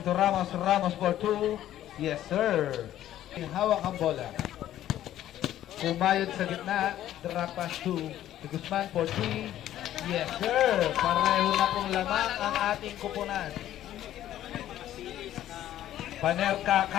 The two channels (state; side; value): quieter; right; 12.5 dB